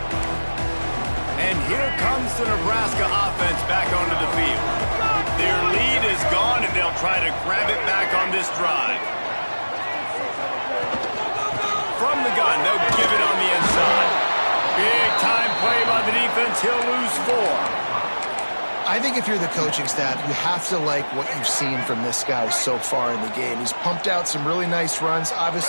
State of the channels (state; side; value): inverted; both; correlation -1.00